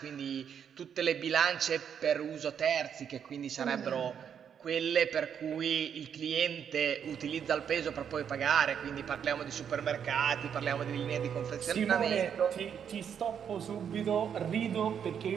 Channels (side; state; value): left; quieter; 8.1 dB